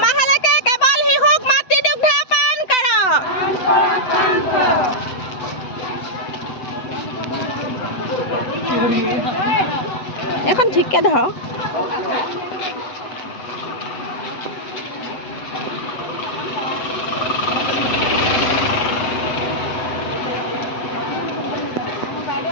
মাহলৈকে কেৱল শিশুক মাতৃদুগ্ধ পান কৰক। এখন ঠিককে ধৰক।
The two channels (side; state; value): right; late; 7.9 ms